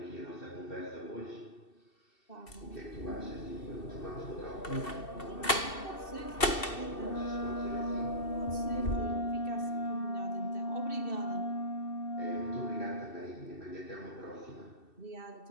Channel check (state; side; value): late; right; 2.7 ms